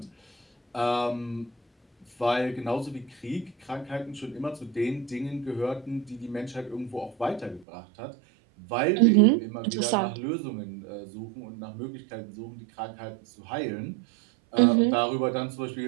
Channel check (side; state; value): left; drops out; at 7.7 s